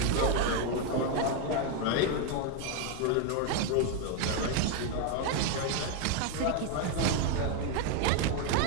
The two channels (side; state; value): both; different; correlation 0.01